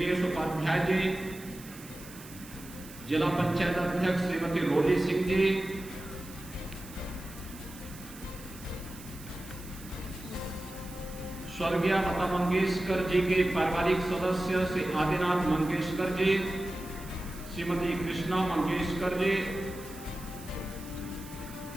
उपाध्याय जी, जिला पंचायत अध्यक्ष श्रीमती रोली सिंह जी, स्वर्गीय लता मंगेशकर जी के पारिवारिक सदस्य श्री आदिनाथ मंगेशकर जी, श्रीमती कृष्णा मंगेशकर जी,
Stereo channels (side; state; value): right; noise; hiss, 17 dB below the sound